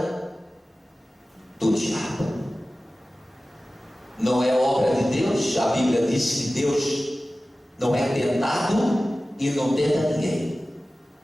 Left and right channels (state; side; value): normal; both; correlation 0.96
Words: do diabo. Não é obra de Deus. A Bíblia diz que Deus não é tentado e não tenta ninguém.